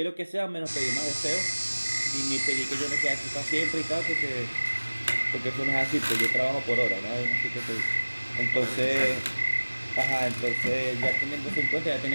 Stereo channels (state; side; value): inverted; both; correlation -1.00